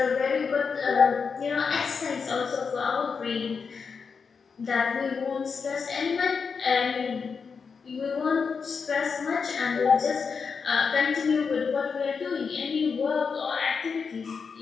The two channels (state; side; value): quieter; right; 5.6 dB